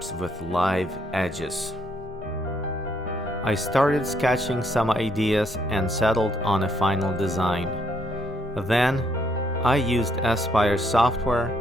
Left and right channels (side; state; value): both; normal; correlation 0.72